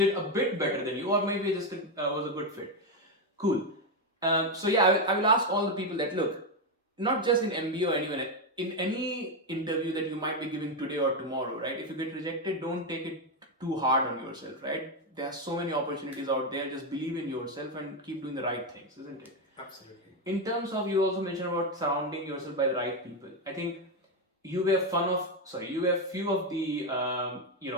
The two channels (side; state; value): both; normal; correlation 0.07